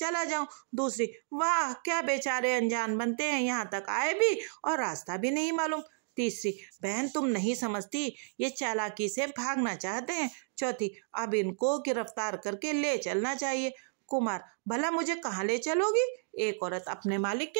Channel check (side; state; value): left; silent; digital silence